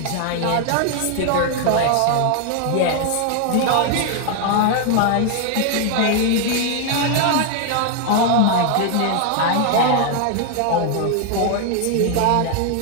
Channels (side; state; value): both; different; correlation 0.00